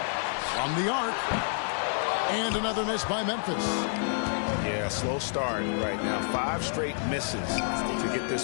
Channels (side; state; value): right; silent; 59 dB below the other